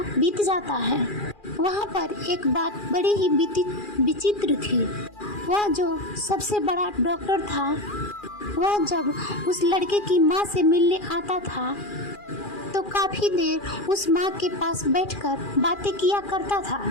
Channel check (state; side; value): late; right; 2.4 ms